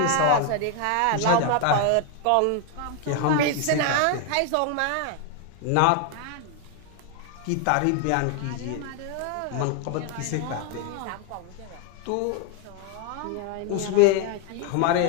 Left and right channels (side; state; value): both; different; correlation 0.01